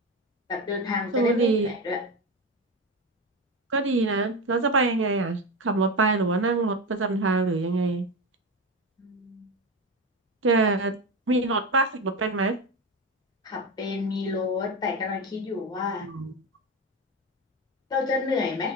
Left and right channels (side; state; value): both; normal; correlation 0.19